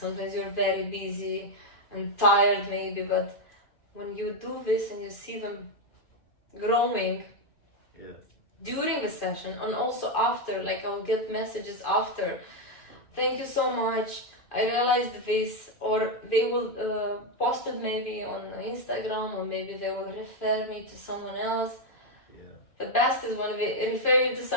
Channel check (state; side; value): late; right; 2.5 ms